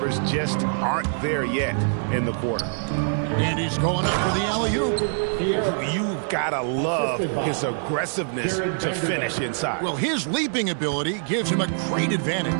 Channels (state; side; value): silent; left; 62 dB below the other